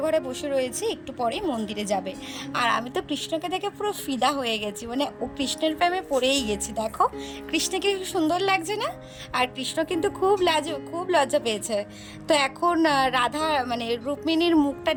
ঘরে বসে রয়েছে, একটু পরেই মন্দিরে যাবে। আর আমি তো কৃষ্ণকে দেখে পুরো ফিদা হয়ে গেছি, মানে ও কৃষ্ণের প্রেমে পড়েই গেছি। দেখো কৃষ্ণকে খুব সুন্দর লাগছে না? আর কৃষ্ণ কিন্তু খুব লজ্জা পেয়েছে। তো এখন রাধা মানে রুক্মিণীর মুখটা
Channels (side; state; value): both; identical; correlation 1.00